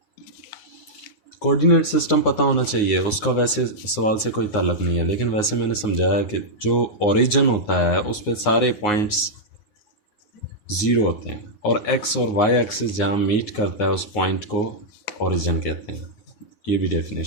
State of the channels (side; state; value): right; late; 9.6 ms